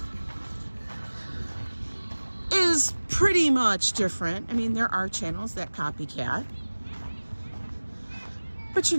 is pretty much different. I mean, there are channels that copycat, but you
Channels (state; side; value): inverted; both; correlation -1.00